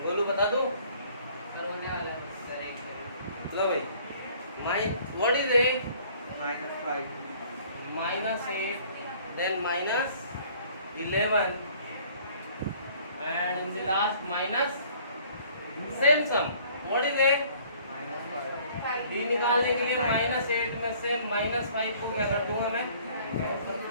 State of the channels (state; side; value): inverted; both; correlation -0.56